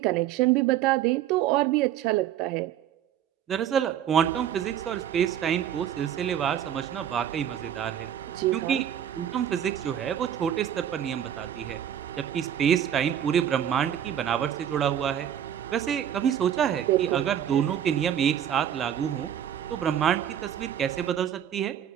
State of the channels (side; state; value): left; quieter; 10.0 dB